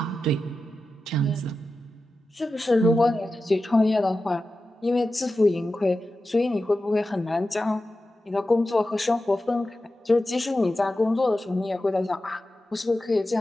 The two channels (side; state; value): both; normal; correlation 0.93